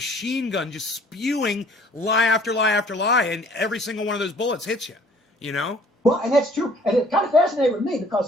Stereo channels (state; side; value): normal; both; correlation 0.56